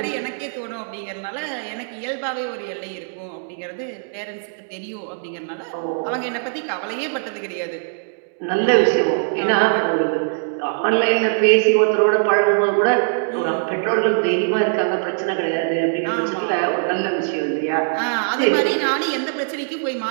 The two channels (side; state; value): left; silent; digital silence